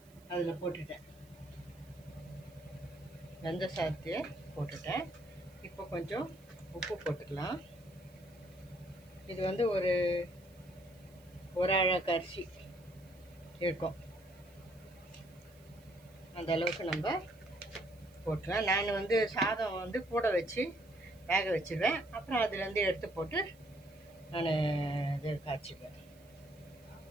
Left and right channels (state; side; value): noise; right; hiss, 28 dB below the sound